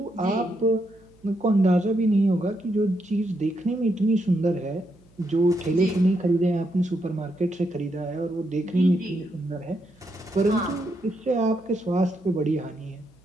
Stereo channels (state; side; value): noise; right; hum, 30 dB below the sound